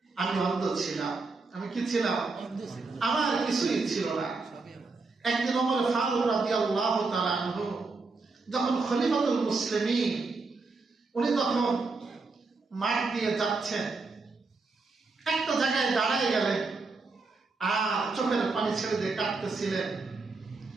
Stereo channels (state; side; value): quieter; left; 4.0 dB